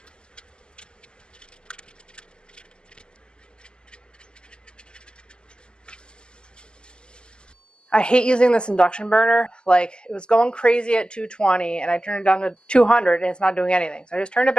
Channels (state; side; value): late; right; 0.048 ms